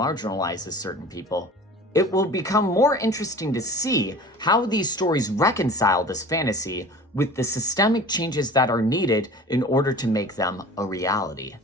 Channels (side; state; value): both; normal; correlation 0.40